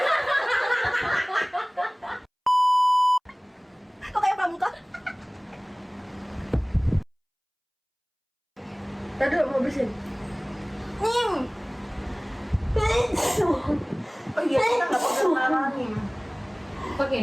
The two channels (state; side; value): identical; both; correlation 1.00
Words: Kok kayak pramuka? Tadi mau bersin. Oh iya, kita nggak pakai naranin. Pakai